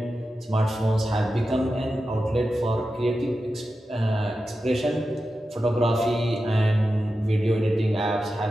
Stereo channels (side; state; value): both; normal; correlation 0.91